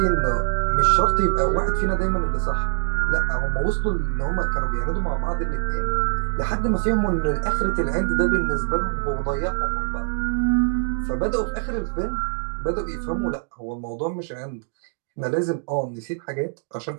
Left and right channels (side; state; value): left; silent; digital silence